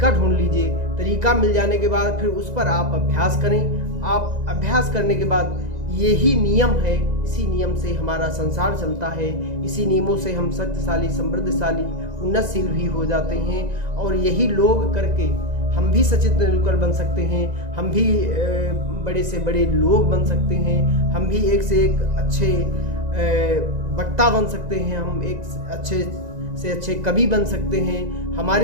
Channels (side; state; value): left; late; 1.9 ms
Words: ढूंढ लीजिए। तरीका मिल जाने के बाद फिर उस पर आप अभ्यास करें। आप अभ्यास करने के बाद यही नियम है, इसी नियम से हमारा संसार चलता है, इसी नियमों से हम शक्तिशाली, समृद्धशाली, उन्नतशील भी हो जाते हैं और यही लोग करके हम भी सचिन तेंदुलकर बन सकते हैं, हम भी बड़े से बड़े लोग बन सकते हैं, हम भी एक से एक अच्छे वक्ता बन सकते हैं, हम एक अच्छे से अच्छे कवि बन सकते हैं।